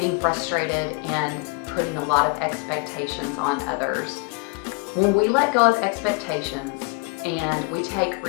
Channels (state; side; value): quieter; right; 29.9 dB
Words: frustrated and putting a lot of expectations on others. When we let go of expectations and we take